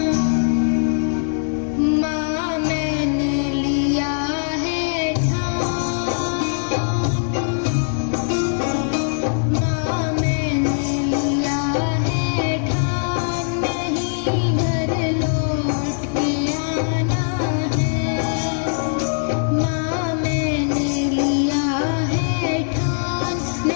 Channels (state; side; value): silent; right; digital silence